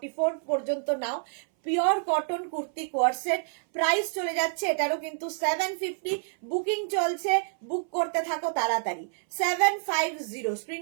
পর্যন্ত নাও। Pure cotton kurti coord set, price চলে যাচ্ছে এটারও কিন্তু 750। বুকিং চলছে, বুক করতে থাকো তাড়াতাড়ি। 750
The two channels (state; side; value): silent; left; 59 dB below the other